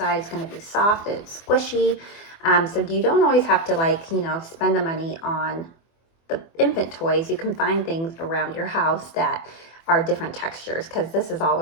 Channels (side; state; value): right; late; 24 ms